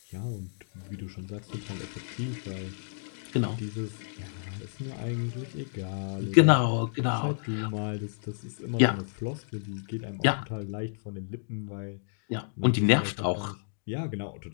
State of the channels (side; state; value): right; silent; digital silence